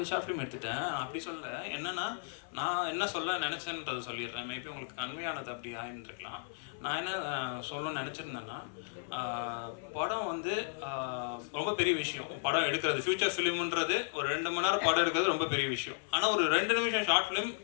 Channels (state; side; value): silent; right; 55 dB below the other